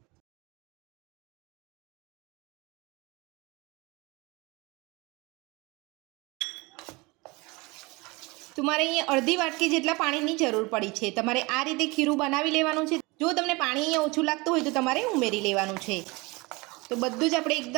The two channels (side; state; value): left; quieter; 25.0 dB